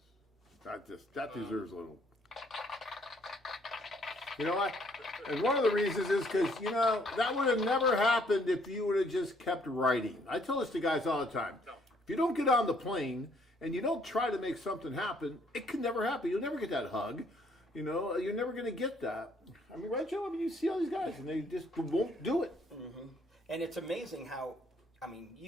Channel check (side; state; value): both; normal; correlation 0.65